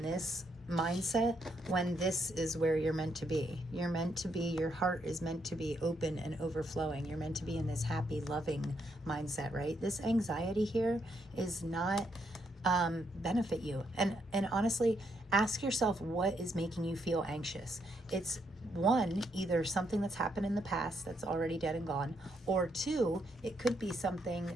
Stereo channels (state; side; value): normal; both; correlation 0.76